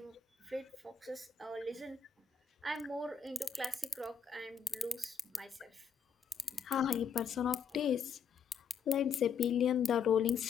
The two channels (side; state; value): right; quieter; 6.6 dB